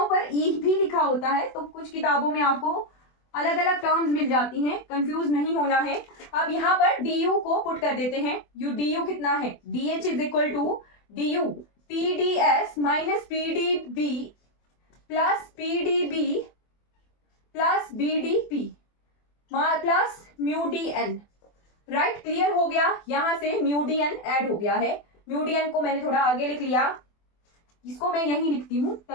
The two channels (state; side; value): late; right; 24 ms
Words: पर E भी लिखा होता है, तो कुछ किताबों में आपको अलग अलग टर्म्स मिल जाती हैं, कंफ्यूज नहीं होना है। अब यहाँ पर du को पुट कर देते हैं, du कितना है, dH is equal to du TdS minus PdB plus PdB plus BdP plus mu DN, right. Clear हो गया, यहां से म्यू DN ऐड हो गया है। म्यू DN को मैंने थोड़ा आगे लिख लिया, इसको मैं यहीं लिखती हूँ